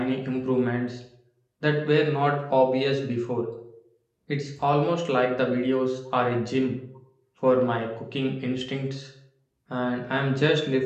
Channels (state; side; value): identical; both; correlation 1.00